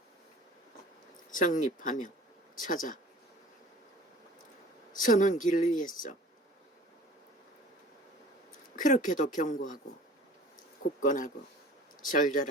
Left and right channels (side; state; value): both; normal; correlation 0.45